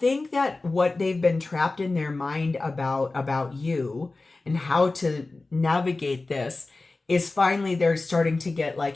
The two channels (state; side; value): quieter; right; 3.4 dB